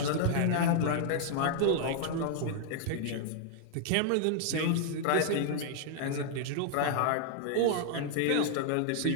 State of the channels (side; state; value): both; different; correlation -0.01